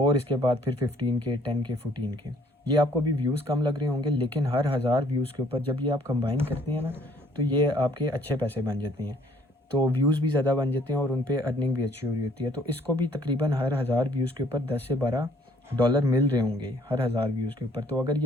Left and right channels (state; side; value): normal; both; correlation 0.60